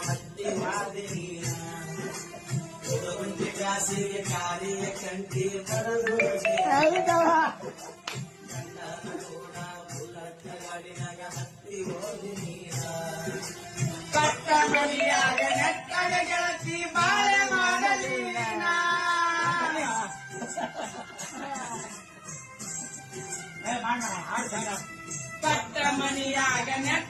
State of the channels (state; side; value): identical; both; correlation 1.00